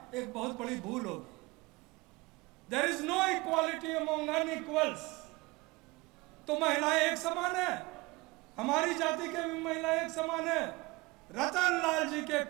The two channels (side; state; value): left; quieter; 23.5 dB